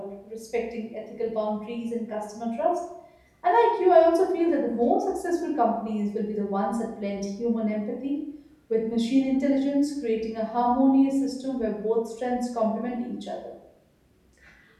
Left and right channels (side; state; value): both; identical; correlation 1.00